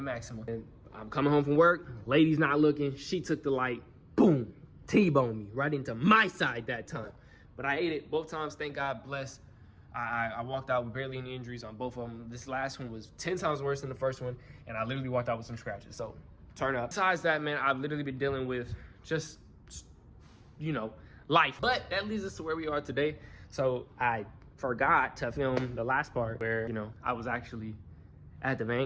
Maxima. And I'm coming home from work, lady's not looking. She took the light, boom, T-boned me right into my side that time. But I ate it both times, thank God, bless. I walked out with barely any injuries on both of them. This last one was 10 times worse than the first one, and I literally walked out with some scratches, so turn up. Besides that, man, I've literally been dealing with just, life. But that leads us to where we are today. So I forgot to film the last part where, I was actually at the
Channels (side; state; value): both; identical; correlation 1.00